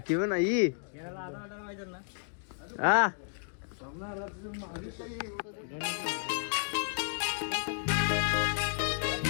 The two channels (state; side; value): silent; right; digital silence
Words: पण नाही. हा